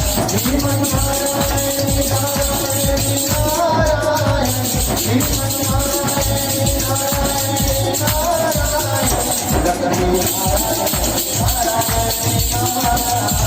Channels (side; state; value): both; identical; correlation 1.00